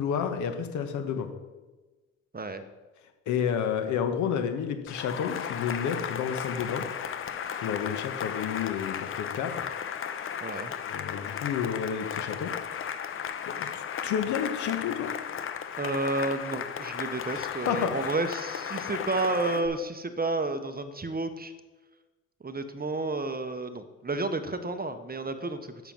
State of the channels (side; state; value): right; quieter; 3.4 dB